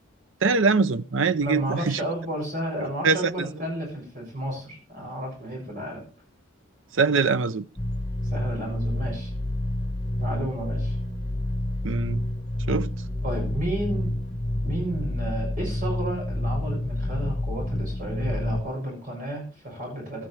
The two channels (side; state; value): both; normal; correlation 0.50